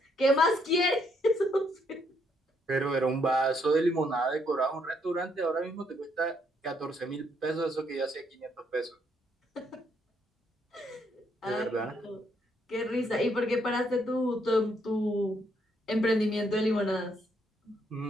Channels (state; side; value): normal; both; correlation 0.72